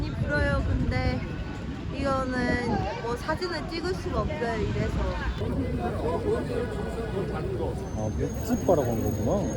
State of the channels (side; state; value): both; identical; correlation 1.00